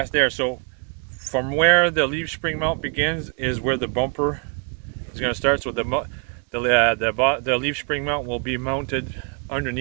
there. So from where the leaf spring mount begins is where the bumper is going to start. So the leaf spring mount will be mounted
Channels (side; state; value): left; quieter; 37.8 dB